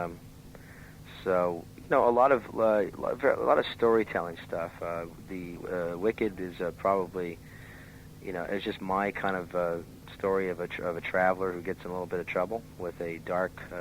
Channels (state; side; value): identical; both; correlation 1.00